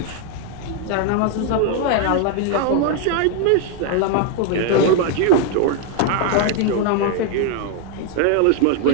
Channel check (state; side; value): different; both; correlation 0.00